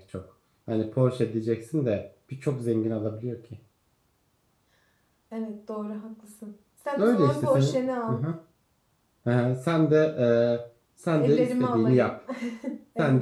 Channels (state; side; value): identical; both; correlation 1.00